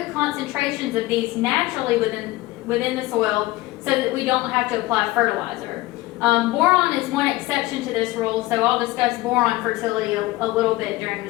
concentrations of these naturally within the soil so that we don't have to apply fertilizer. Boron is one exception to this rule, so I'll discuss boron fertility a little bit during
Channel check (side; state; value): right; quieter; 18.5 dB